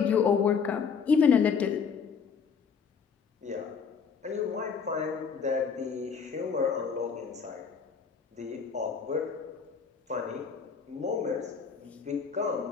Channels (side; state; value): right; quieter; 6.0 dB